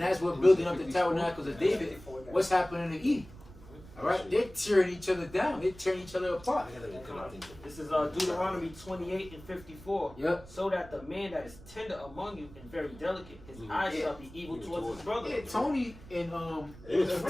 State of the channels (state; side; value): noise; right; rumble, 19 dB below the sound